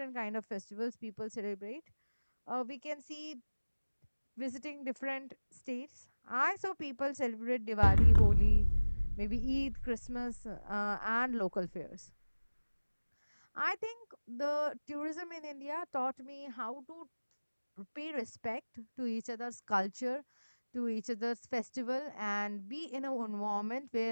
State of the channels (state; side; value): inverted; both; correlation -1.00